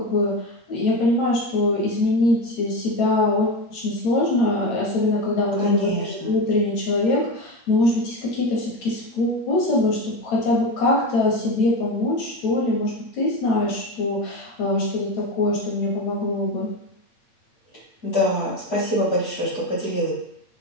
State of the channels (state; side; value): late; right; 8.9 ms